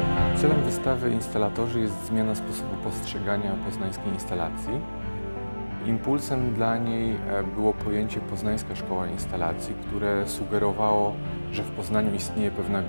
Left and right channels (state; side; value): inverted; both; correlation -1.00